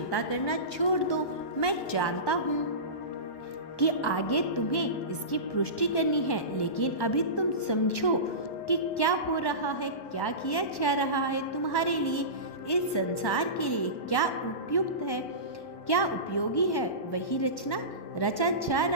करना छोड़ दो। मैं जानता हूँ कि आगे तुम्हें इसकी पुष्टि करनी है, लेकिन अभी तुम समझो कि क्या हो रहा है, क्या किया जा रहा है तुम्हारे लिए, इस संसार के लिए क्या उपयुक्त है, क्या उपयोगी है, वही रचा जा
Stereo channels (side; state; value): right; late; 1.1 ms